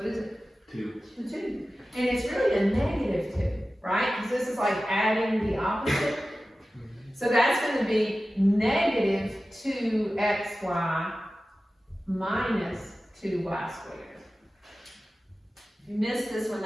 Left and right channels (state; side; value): normal; both; correlation 0.95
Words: is it? 2. The 2. And it's really a negative 2, right? Because this is like adding the opposite. So that's going to be negative 2xy minus 2y squared. If you missed this one,